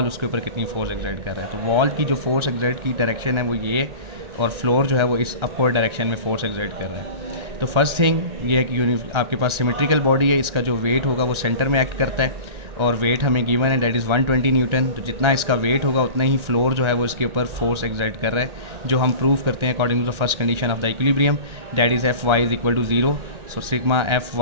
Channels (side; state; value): left; late; 1.4 ms